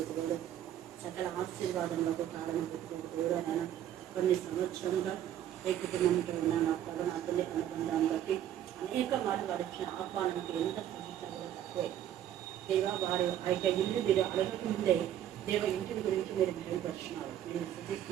సకల ఆశీర్వాదములకు కారణం పెట్టుకుని దేవుడు ఆయన కొన్ని సంవత్సరంగా ఏ కుటుంబంతో ఉన్న నా తల్లి అనుబంధాన్ని బట్టి అనేక మార్లు వారి ఇచ్చిన ఆహ్వానానికి ఎంత సూచించాలో తక్కువే. దేవ వారి ఆ ఇల్లు మీరు అడగకముందే దేవ ఇంటిని గురించి మీరు మెరుగుపరుచున్నారు. నేను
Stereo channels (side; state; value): left; quieter; 11.1 dB